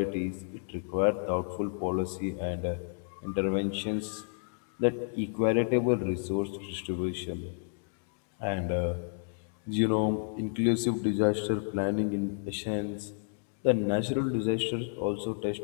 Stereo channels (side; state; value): right; silent; digital silence